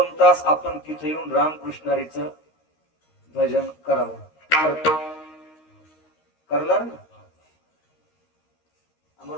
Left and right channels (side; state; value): right; late; 13 ms